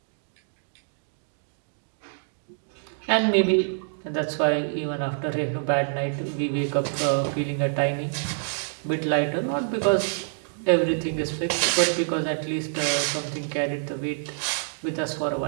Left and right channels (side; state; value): left; silent; digital silence